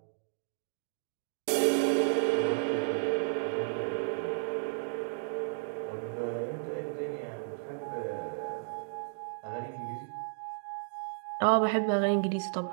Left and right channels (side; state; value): left; silent; digital silence